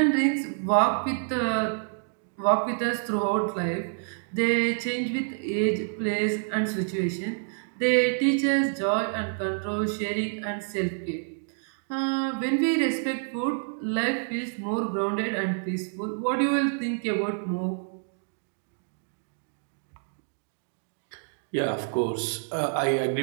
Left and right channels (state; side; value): silent; left; digital silence